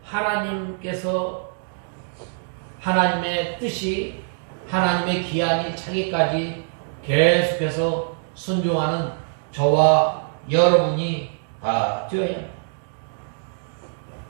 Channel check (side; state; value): left; silent; digital silence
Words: 하나님께서 하나님의 뜻이 하나님의 기한이 차기까지 계속해서 순종하는 저와 여러분이 다 되어야 합니다.